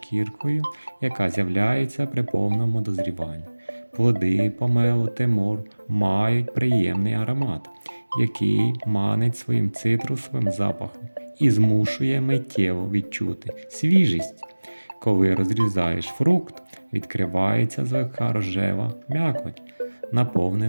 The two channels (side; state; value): both; inverted; correlation -1.00